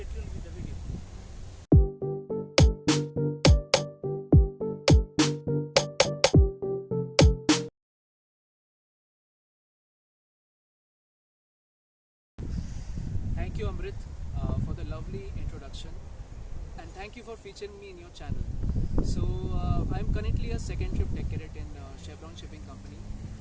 tuned with the video. Thank you, Amrit, for the lovely introduction, and thank you for featuring me in your channel. So, I'm currently a second trip deck cadet in Chevron Shipping Company,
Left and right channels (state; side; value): identical; both; correlation 1.00